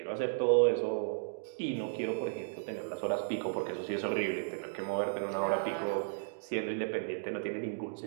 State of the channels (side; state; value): left; silent; digital silence